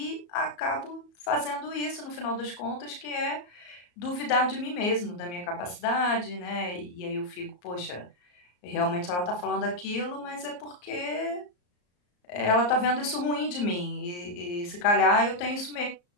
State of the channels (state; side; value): late; right; 34 ms